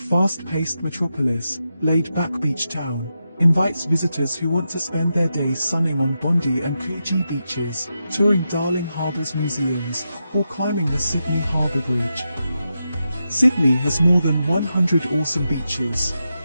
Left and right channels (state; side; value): inverted; both; correlation -0.87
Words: metropolis, laid-back beach town, invites visitors who want to spend their days sunning on Bondi and Coogee beaches, touring Darling Harbour's museums, or climbing the Sydney Harbour Bridge. Sydney has more than 100 awesome beaches.